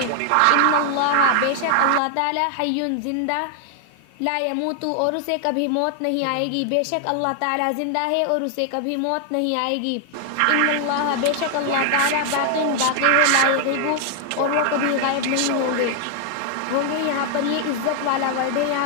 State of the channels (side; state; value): both; different; correlation 0.00